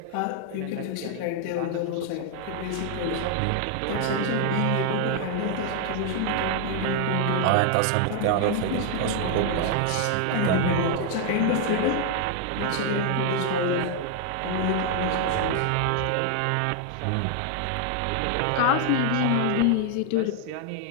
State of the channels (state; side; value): different; both; correlation 0.00